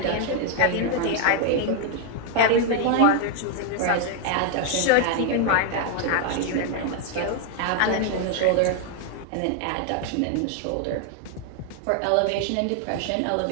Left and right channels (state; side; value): different; both; correlation 0.00